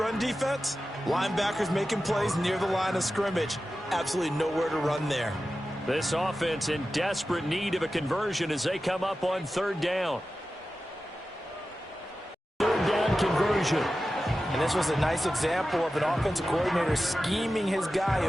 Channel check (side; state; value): both; normal; correlation 0.93